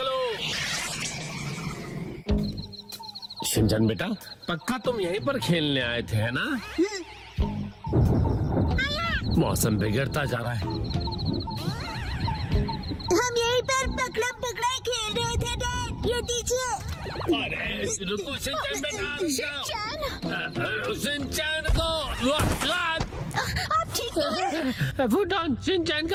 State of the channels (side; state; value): both; identical; correlation 1.00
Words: शिनचैन बेटा, पक्का तुम यहीं पर खेलने आए थे, है ना? मौसम बिगड़ता जा रहा है। हम यहीं पर पकड़म पकड़ाई खेल रहे थे डैड। ये दीजिए। अरे रुको शिनचैन बेटा। शिनचैन को आप ठीक तो हैं? फुटॉन, शिनचैन